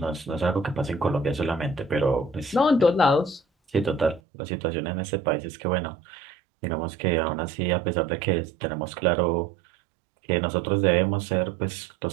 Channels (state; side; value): drops out; left; at 4.2 s